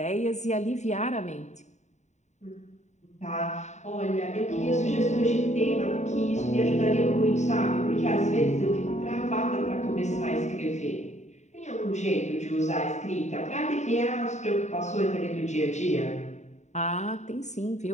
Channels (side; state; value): right; late; 0.34 ms